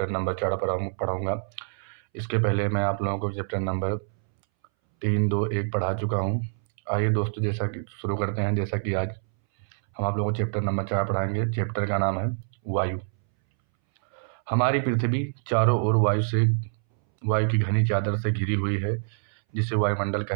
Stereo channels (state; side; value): silent; left; 61 dB below the other